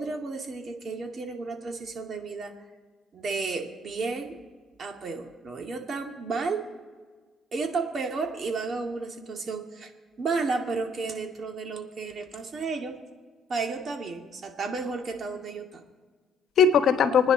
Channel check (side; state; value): both; normal; correlation 0.63